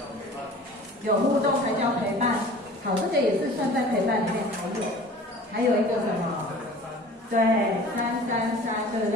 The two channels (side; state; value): both; normal; correlation 0.44